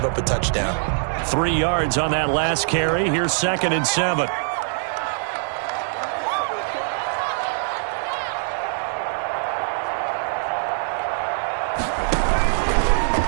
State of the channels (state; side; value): silent; left; digital silence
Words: up a touchdown. 3 yards on that last carry. Here's 2nd and 7.